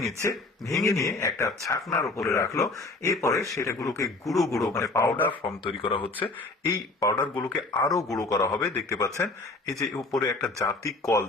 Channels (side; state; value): right; quieter; 3.3 dB